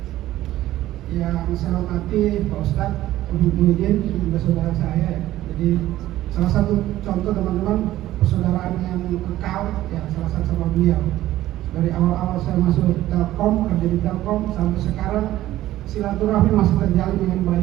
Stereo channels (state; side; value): quieter; left; 14.7 dB